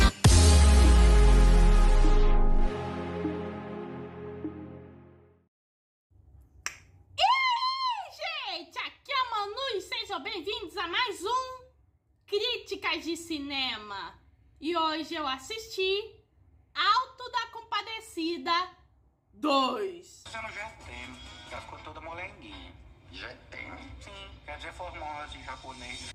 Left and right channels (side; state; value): both; identical; correlation 1.00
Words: Gente, aqui é a Manu e sejam bem-vindos a mais um Críticas de Cinema. E hoje eu assisti Alto da Compadecida 2. Dizendo já tem, já ficou toda molenguinha. Já tem? Sim, quer dizer formosa em japonês.